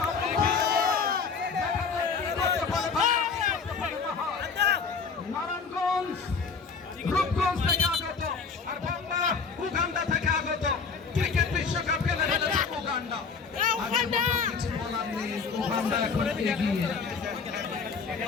নারায়ণগঞ্জ, রূপগঞ্জ থেকে আগত, আর বাংলা উগান্ডা থেকে আগত। ক্রিকেট বিশ্বকাপ খেলে ফেলেছে উগান্ডা। কিছু বলার নেই, উগান্ডা এখন এগিয়ে।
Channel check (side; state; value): right; quieter; 5.3 dB